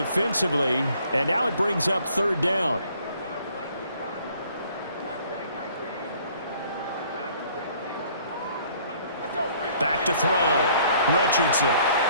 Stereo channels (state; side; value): inverted; both; correlation -0.59